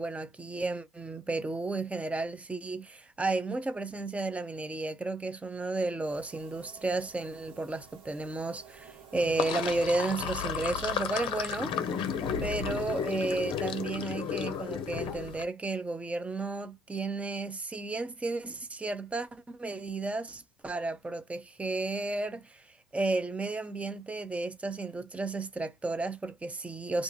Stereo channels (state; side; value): normal; both; correlation 0.71